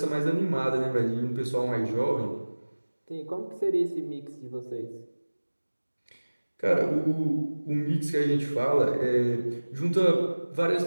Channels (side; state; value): both; inverted; correlation -1.00